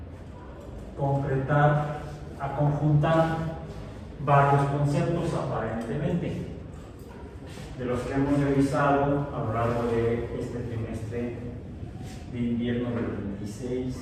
concretar, a conjuntar varios conceptos aparentemente de los que hemos revisado a lo largo de este trimestre de invierno del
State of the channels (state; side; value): identical; both; correlation 1.00